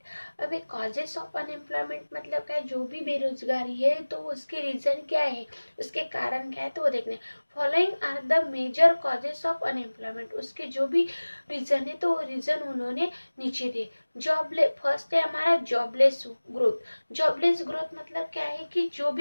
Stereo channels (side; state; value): both; inverted; correlation -1.00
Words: अब एक कॉजेस ऑफ अनएम्प्लॉयमेंट मतलब क्या है, जो भी बेरोजगारी है तो उसके रीजन क्या है, उसके कारण क्या है तो वो देखने। Following are the major causes of unemployment, उसके जो भी रीजन है तो वो रीजन उन्होंने नीचे दिए। फर्स्ट है हमारा जॉबलेस ग्रोथ। जॉबलेस ग्रोथ मतलब क्या है कि जो